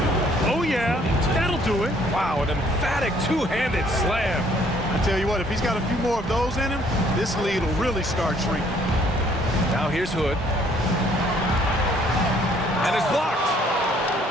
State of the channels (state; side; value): normal; both; correlation 0.62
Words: Oh, yeah, that'll do it. Wow, an emphatic two-handed slam. I tell you what, if he's got a few more of those in him, this lead will really start shrinking. Now here's Hood. And it's blocked.